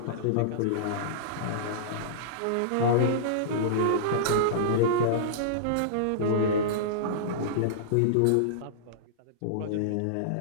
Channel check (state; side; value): different; both; correlation -0.03